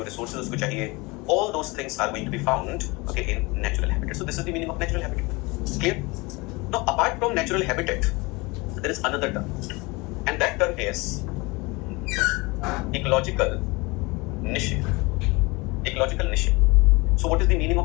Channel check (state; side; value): quieter; right; 25.1 dB